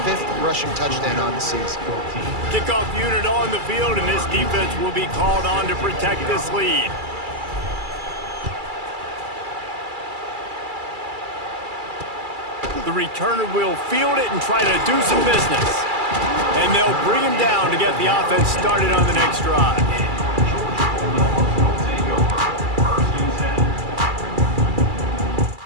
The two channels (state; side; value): late; left; 2.3 ms